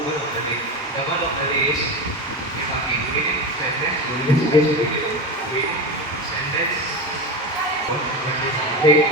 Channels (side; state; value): both; normal; correlation 0.21